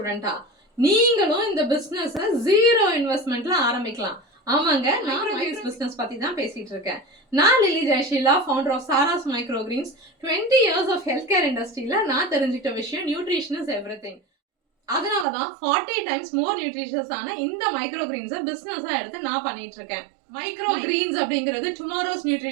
நீங்களும் இந்த பிசினஸ் ஜீரோ இன்வெஸ்ட்மெண்ட்ல ஆரம்பிக்கலாம். ஆமாங்க, நான் மைக்ரோ பிசினஸ் பத்தி தான் பேசிட்டு இருக்கேன். நான் Lily Jayasheela, founder of Sara's micro greens. 20 years of health care இண்டஸ்ட்ரியில நான் தெரிஞ்சுக்கிட்ட விஷயம் நியூட்ரிஷன் இஸ் எவ்ரிதிங். அதனாலதான் 40 டைம்ஸ் மோர் நியூட்ரிஷியஸ் ஆன இந்த மைக்ரோ கிரீன்ஸை பிசினஸா எடுத்து நான் பண்ணிட்டு இருக்கேன். மைக்ரோ கிரீன்ஸ் அப்படிங்கிறது டுமாரோஸ்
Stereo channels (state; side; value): drops out; left; at 15.2 s